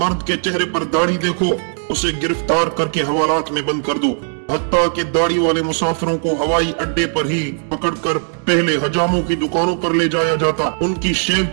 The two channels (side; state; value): left; silent; 67 dB below the other